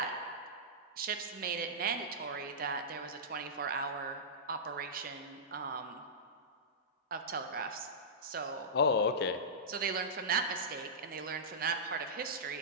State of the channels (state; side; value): normal; both; correlation -0.17